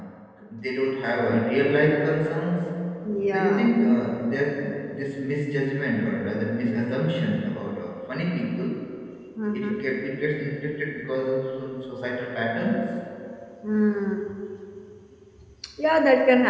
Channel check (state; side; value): identical; both; correlation 1.00